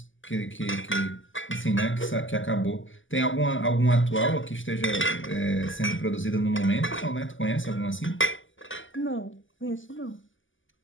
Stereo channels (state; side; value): late; right; 0.57 ms